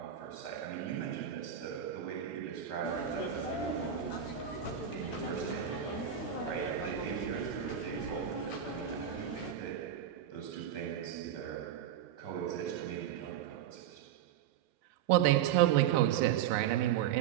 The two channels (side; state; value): left; quieter; 9.8 dB